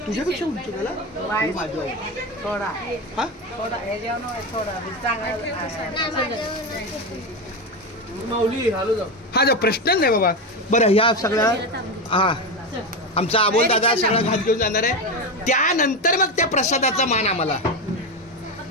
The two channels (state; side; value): normal; both; correlation 0.15